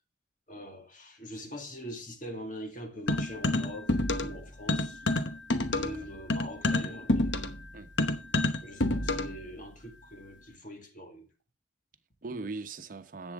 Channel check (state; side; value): normal; both; correlation 0.56